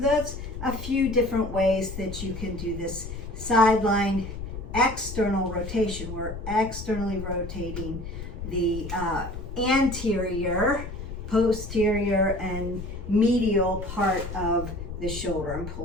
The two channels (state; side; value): noise; left; rumble, 8 dB below the sound